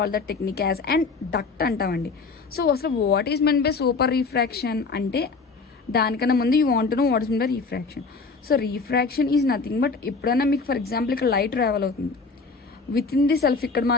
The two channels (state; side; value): quieter; right; 4.3 dB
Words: the technique as and duct అంటామండి. సో అసలు what is mean by super refraction అంటే దానికన్నా ముందు you want to know what is mean by refraction. So refraction is nothing but ఎప్పుడైనా మీకు for example ఇక్కడ light travel అవుతుంది within the self, ఇక్కడ